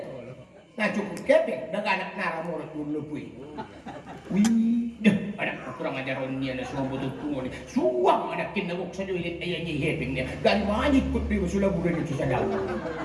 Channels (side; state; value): both; identical; correlation 1.00